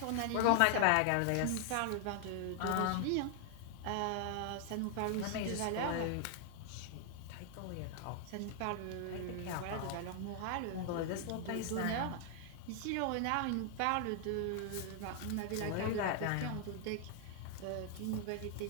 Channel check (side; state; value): both; different; correlation 0.00